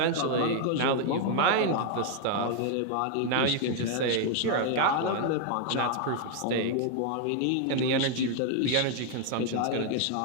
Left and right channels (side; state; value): both; different; correlation 0.00